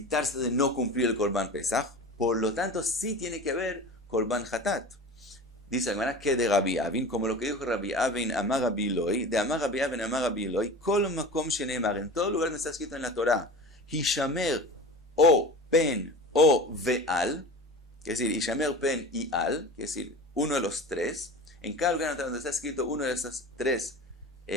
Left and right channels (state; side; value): normal; both; correlation 0.34